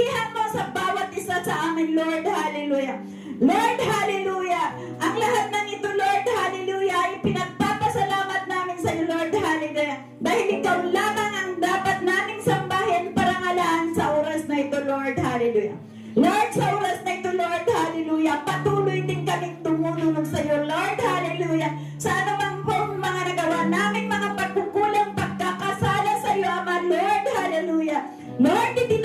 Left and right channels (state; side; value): identical; both; correlation 1.00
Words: mo sa bawat isa sa amin, Lord, hallelujah, Lord, hallelujah, ang lahat ng ito, Lord, hallelujah, ay pinagpapasalamat namin sa iyo, Lord, hallelujah, dahil ikaw lamang ang dapat naming sambahin, parangalan sa oras na ito, Lord, hallelujah. Lord, sa oras na ito, Lord, hallelujah, patuloy din kaming tumulong sa iyo, Lord, hallelujah, sa anumang pong mga nagawa naming mga pagkukulang, pagkakasala sa iyo, Ama, Lord, hallelujah. Lord,